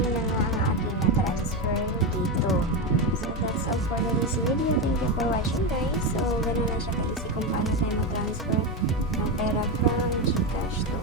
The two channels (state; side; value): normal; both; correlation 0.13